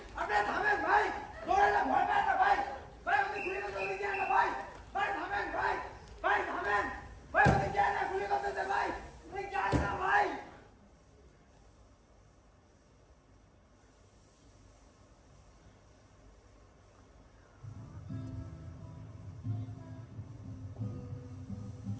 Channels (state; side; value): identical; both; correlation 1.00